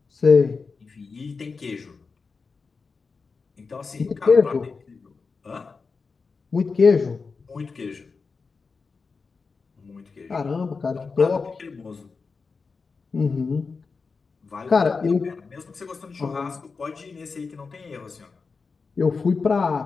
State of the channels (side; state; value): right; quieter; 4.7 dB